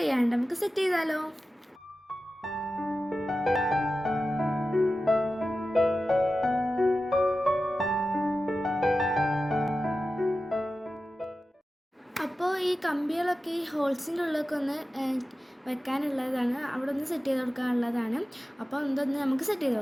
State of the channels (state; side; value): normal; both; correlation 0.93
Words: ചെയ്യാണ്ട് നമുക്ക് സെറ്റ് ചെയ്താലോ. അപ്പോൾ ഈ കമ്പികളൊക്കെ ഈ ഹോൾസിൻ്റെ ഉള്ളിലൊക്കെ ഒന്ന് വെക്കാനുള്ളതാണ്, അവിടെ ഒന്ന് സെറ്റ് ചെയ്ത് കൊടുക്കാനുള്ളതാണ്. അപ്പോൾ എന്തൊന്ന് നമുക്ക് സെറ്റ് ചെയ്ത്